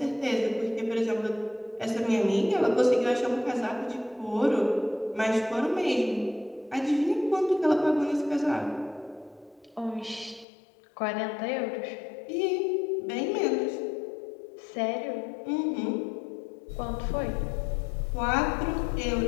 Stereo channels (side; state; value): right; drops out; at 10.5 s